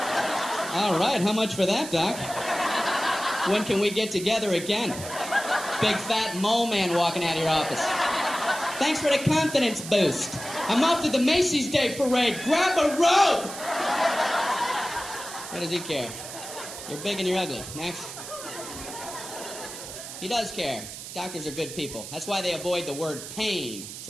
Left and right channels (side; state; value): right; noise; hiss, 11 dB below the sound